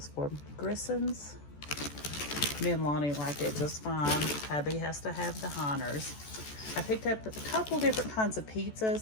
for, Grissons. Me and Lonnie like it just fine. Hubby has to have the Heiners. I picked up a couple different kinds of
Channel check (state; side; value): late; right; 14 ms